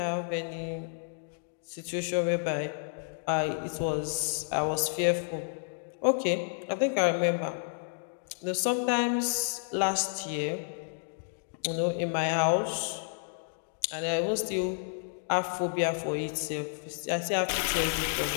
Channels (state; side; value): silent; right; digital silence